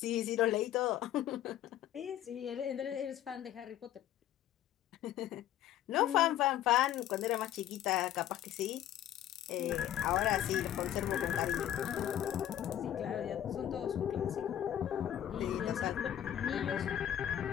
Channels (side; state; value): right; quieter; 11.6 dB